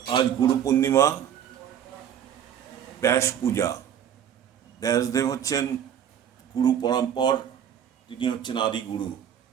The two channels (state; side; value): quieter; left; 9.3 dB